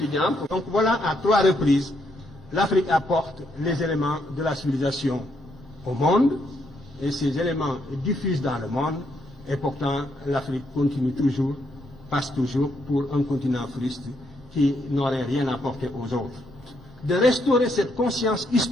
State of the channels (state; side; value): normal; both; correlation 0.75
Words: Donc voilà, à 3 reprises, l'Afrique apporte les éléments de la civilisation au monde, et ces éléments diffusent dans le monde, et pourtant l'Afrique continue toujours, passe toujours pour un continent fruste qui n'aurait rien apporté aux autres. De restaurer cette conscience